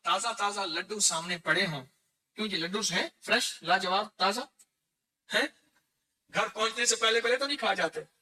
تازہ لڈو سامنے پڑے ہوں، کیوں جی لڈو ہیں فریش لاجواب تازہ ہیں، گھر پہنچنے سے پہلے تو نہیں کھا جاتے،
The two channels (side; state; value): both; identical; correlation 1.00